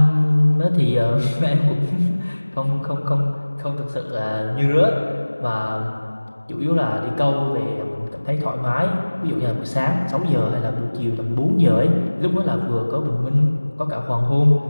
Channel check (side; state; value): both; inverted; correlation -1.00